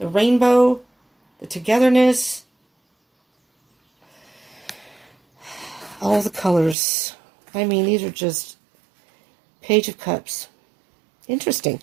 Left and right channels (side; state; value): left; drops out; at 6.8 s